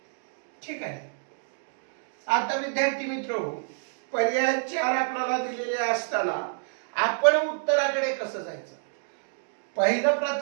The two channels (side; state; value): left; silent; digital silence